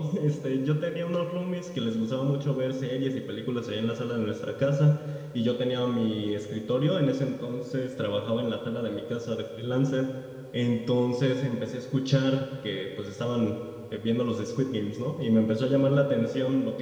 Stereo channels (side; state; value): both; identical; correlation 1.00